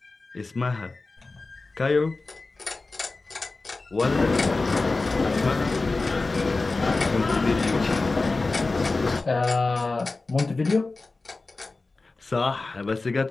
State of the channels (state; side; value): quieter; right; 3.5 dB